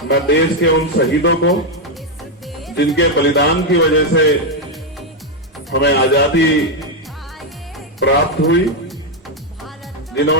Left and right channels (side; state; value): both; normal; correlation 0.03